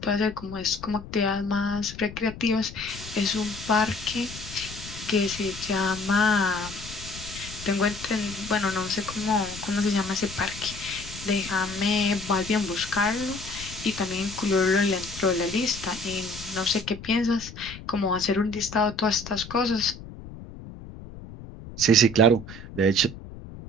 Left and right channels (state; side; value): noise; left; rumble, 14 dB below the sound